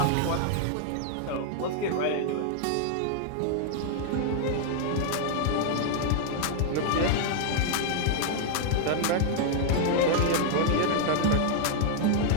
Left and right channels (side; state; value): both; different; correlation 0.00